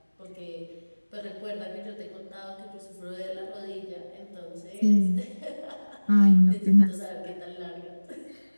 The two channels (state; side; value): inverted; both; correlation -1.00